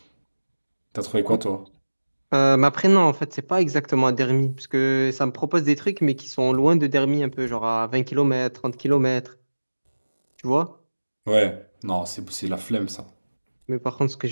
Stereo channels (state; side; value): inverted; both; correlation -1.00